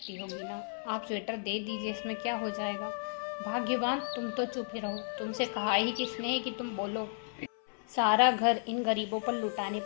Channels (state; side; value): silent; right; 56 dB below the other